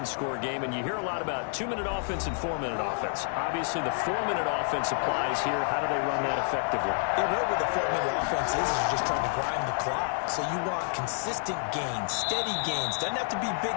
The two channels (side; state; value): right; silent; 58 dB below the other